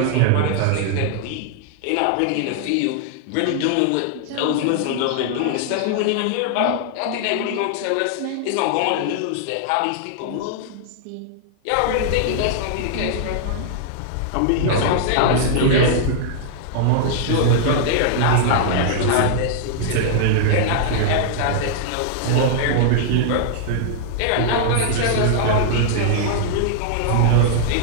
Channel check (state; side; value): different; both; correlation -0.01